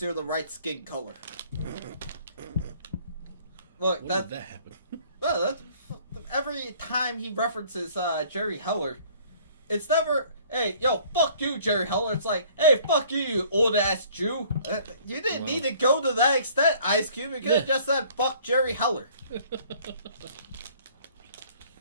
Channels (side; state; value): both; inverted; correlation -0.56